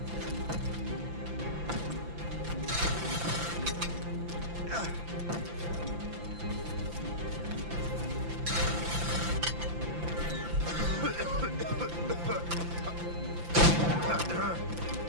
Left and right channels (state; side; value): late; left; 5.9 ms